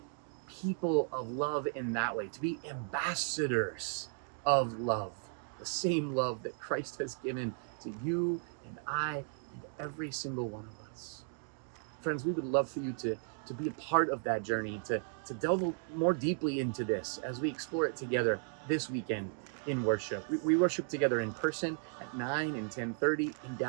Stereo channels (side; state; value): left; silent; 54 dB below the other